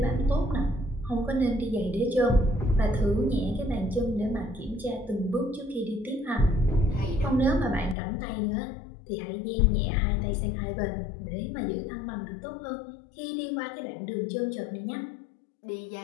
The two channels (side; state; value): right; drops out; at 8.0 s